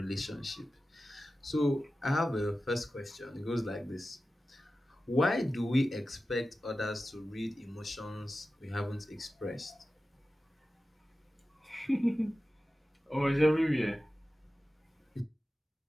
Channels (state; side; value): normal; both; correlation 0.94